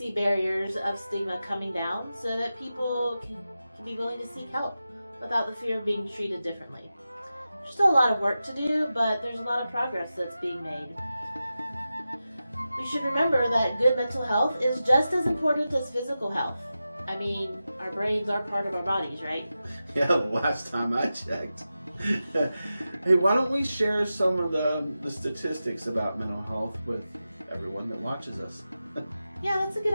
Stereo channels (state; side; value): inverted; both; correlation -0.92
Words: barriers of stigma coming down so that people can be willing to seek help without the fear of being treated differently. There's still a lot of work to do, but there's a lot of progress that's being made. We should remember that good mental health is just as important as physical health. I mean, our brains are part of our bodies, right? Yeah, last time I checked. Hey, why don't we share some of the statistics about mental health with everyone that watches us? Yeah, that's a good